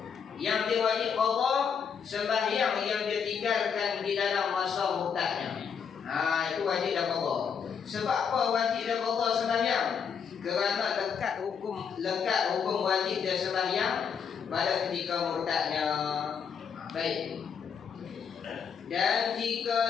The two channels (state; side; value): quieter; right; 6.8 dB